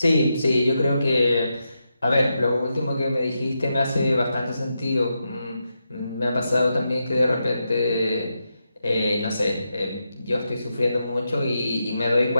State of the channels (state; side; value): inverted; both; correlation -0.86